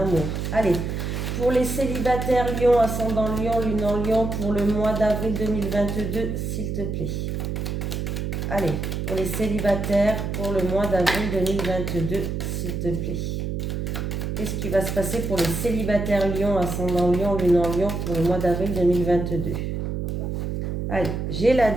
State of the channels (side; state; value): right; noise; hum, 3 dB below the sound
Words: Allez, pour les célibataires lion, ascendant lion, lune en lion pour le mois d'avril 2022, s'il te plaît. Allez, pour les célibataires pour le mois d'avril 2022, s'il te plaît. Qu'est-ce qui va se passer pour les célibataires lion, ascendant lion, lune en lion pour le mois d'avril 2022? Allez, j'ai la